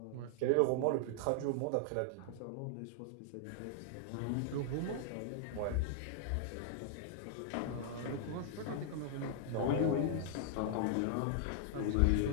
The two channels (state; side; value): different; both; correlation 0.00